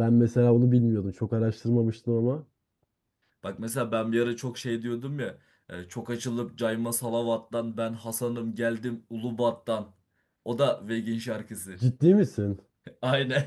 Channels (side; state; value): both; identical; correlation 1.00